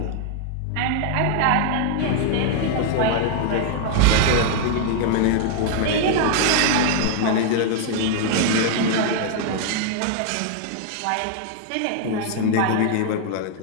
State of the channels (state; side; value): different; both; correlation 0.00